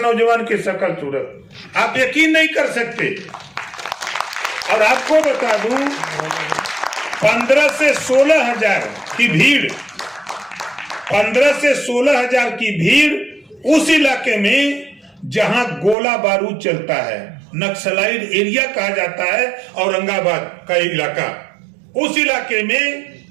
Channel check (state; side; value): drops out; left; at 16.0 s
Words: की शक्ल सूरत, आप यकीन नहीं कर सकते। और आपको बता दूं, 15 से 16 हजार की भीड़, 15 से 16 हजार की भीड़ उस इलाके में जहां गोला बारूद चलता है, नक्सलाइट एरिया कहा जाता है, औरंगाबाद का इलाका, उस इलाके में